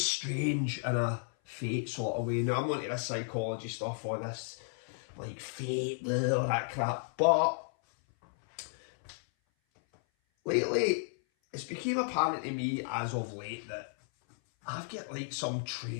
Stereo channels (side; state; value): right; silent; 55 dB below the other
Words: strange in a fate sort of way. Now, I'm not into this psychology stuff or this, like, fate, all that crap. But lately, it's become apparent to me as of late that I've got, like, some